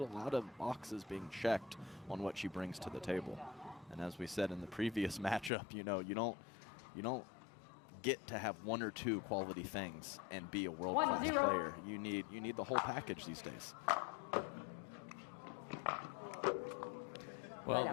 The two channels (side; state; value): right; drops out; at 5.5 s